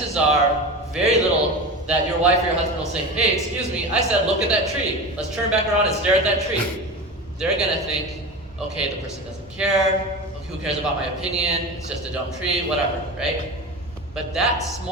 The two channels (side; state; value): both; normal; correlation 0.28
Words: are very little that your wife or your husband will say, hey, excuse me, I said look at that tree. Let's turn back around and stare at that tree. They're gonna think, okay, the person doesn't care, who cares about my opinion, it's just a dumb tree, whatever, right? But that